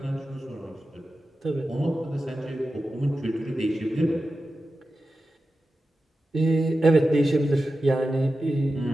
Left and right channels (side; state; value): both; normal; correlation 0.92